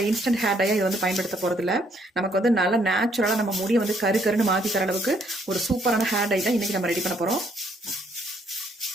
இன்ஸ்டன்ட் ஹேர் டையை இது பயன்படுத்த போகிறதில்ல. நமக்கு நல்லா நேச்சுரலாக நம்ம முடியை கருன்னு மாற்றி தர அளவுக்கு ஒரு சூப்பரான ஹேர் டை தான் இன்னைக்கு நம்ம ரெடி பண்ண போகிறோம்.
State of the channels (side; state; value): both; normal; correlation 0.69